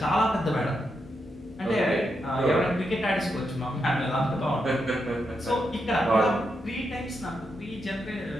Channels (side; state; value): both; normal; correlation 0.83